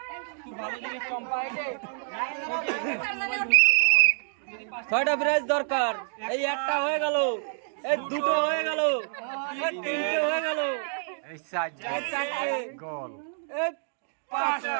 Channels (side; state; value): left; silent; digital silence